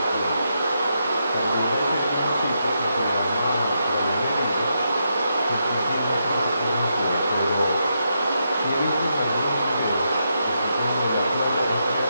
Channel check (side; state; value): both; inverted; correlation -0.82